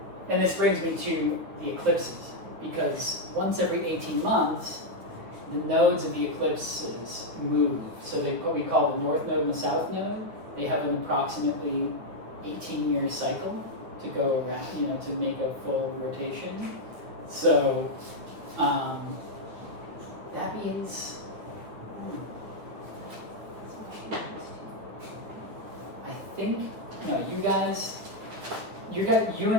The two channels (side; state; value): left; late; 9.1 ms